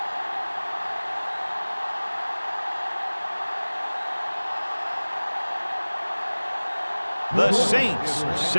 The Saints are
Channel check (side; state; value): both; inverted; correlation -1.00